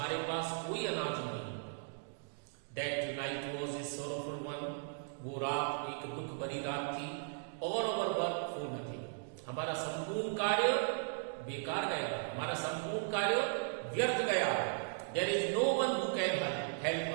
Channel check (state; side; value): silent; left; digital silence